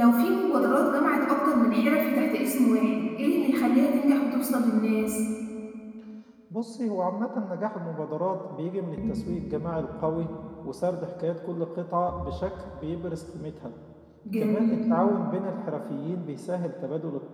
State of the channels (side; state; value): both; identical; correlation 1.00